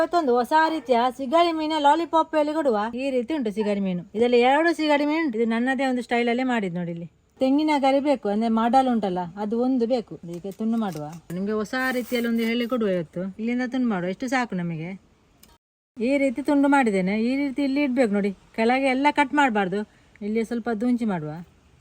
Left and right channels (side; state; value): both; identical; correlation 1.00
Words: ಹೊಸ ರೀತಿಯ ಸಿಗಡಿ ಮೀನ ಲಾಲಿಪಾಪ್ ಅಲ್ಲಿ ಕೊಡುವ ಈ ರೀತಿ ಉಂಟು ಸಿಗಡಿ ಮೀನು. ಇದರಲ್ಲಿ 2 ಸಿಗಡಿ ಮೀನು ಉಂಟು. ಇದು ನನ್ನದೇ ಒಂದು ಸ್ಟೈಲ್ ಅಲ್ಲೇ ಮಾಡಿದ್ ನೋಡಿ. ಇಲ್ಲಿ ತೆಂಗಿನ ಗರಿ ಬೇಕು, ಅಂದ್ರೆ ಮಾಡಲ್ ಉಂಟಲ್ಲ ಅದು ಒಂದು ಬೇಕು. ಈಗ ತುಂಡು ಮಾಡುವ, ನಿಮ್ಗೆ ಹೊಸ ರೀತಿಯಲ್ಲಿ ಒಂದು ಹೇಳಿ ಕೊಡುವ. ಇವತ್ತು ಇಲ್ಲಿಂದ ತುಂಡು ಮಾಡುವ, ಎಷ್ಟು ಸಾಕು ನಮಗೆ. ಈ ರೀತಿ ತುಂಡು ಮಾಡಿದ್ದೇನೆ. ಈ ರೀತಿ ಇಲ್ಲಿ ಇಡ್ಬೇಕು ನೋಡಿ, ಕೆಳಗೆ ಎಲ್ಲ ಕಟ್ ಮಾಡಬಾರ್ದು. ಇಲ್ಲಿ ಸ್ವಲ್ಪ ದುಂಚಿ ಮಾಡುವ,